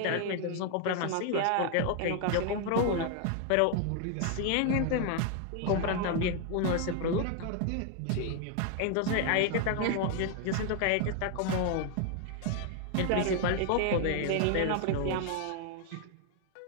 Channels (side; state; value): both; different; correlation 0.00